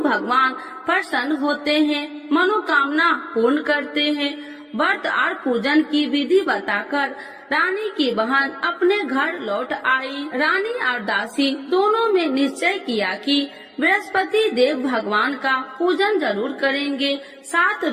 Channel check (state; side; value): identical; both; correlation 1.00